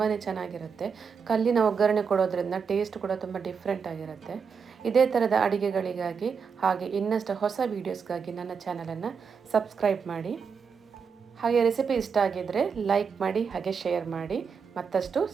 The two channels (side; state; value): left; quieter; 6.0 dB